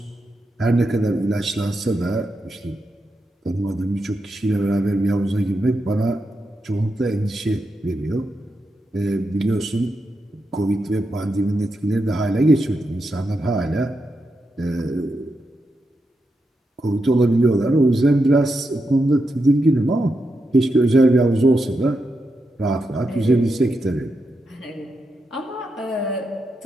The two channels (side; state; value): both; normal; correlation 0.86